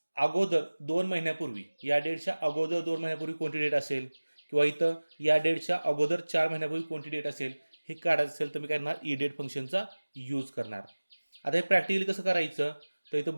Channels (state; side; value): inverted; both; correlation -1.00